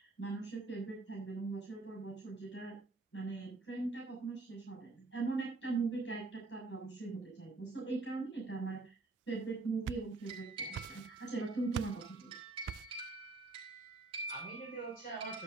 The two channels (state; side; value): quieter; left; 3.5 dB